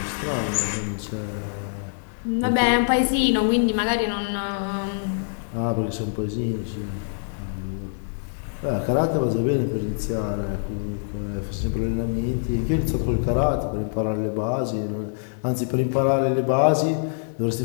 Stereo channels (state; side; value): silent; right; 62 dB below the other